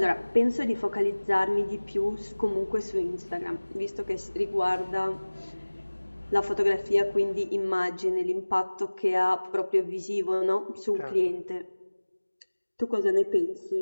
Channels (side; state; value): both; inverted; correlation -1.00